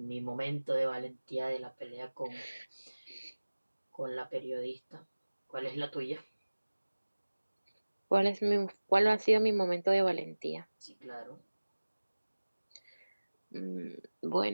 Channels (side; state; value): both; inverted; correlation -1.00